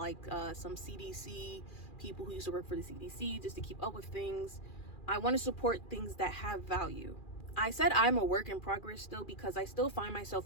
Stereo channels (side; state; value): right; late; 2.4 ms